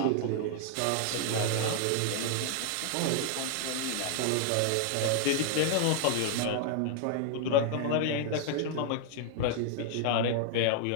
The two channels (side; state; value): both; different; correlation -0.01